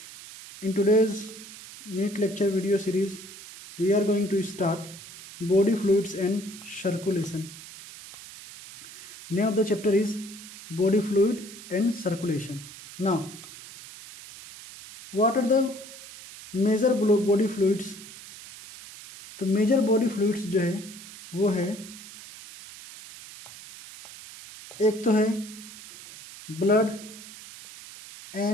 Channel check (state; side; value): noise; right; hiss, 16 dB below the sound